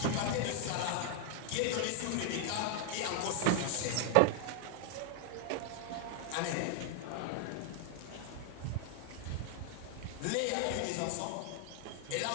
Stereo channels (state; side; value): different; both; correlation 0.00